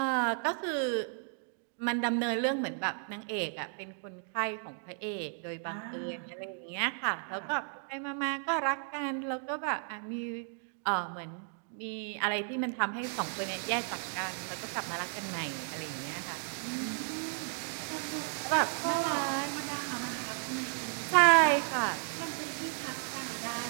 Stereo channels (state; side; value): silent; left; 55 dB below the other